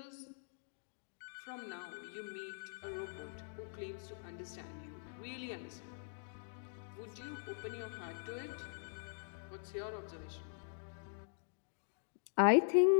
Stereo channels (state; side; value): silent; right; digital silence